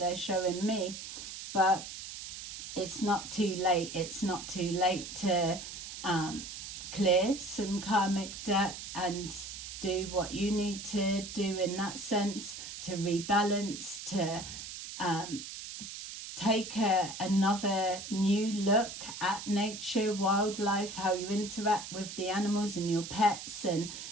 showing me. But it's not too late. It's not too late to clear some karmic debt and do what you need to do in that sense, to rebalance, to take another new look at nature, wildlife, how you interact with the animals and your pets, and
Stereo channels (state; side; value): noise; right; hiss, 9 dB below the sound